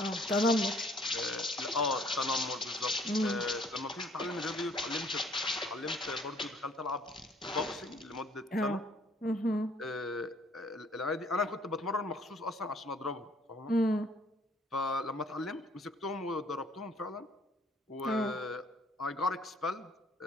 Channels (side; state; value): both; normal; correlation 0.60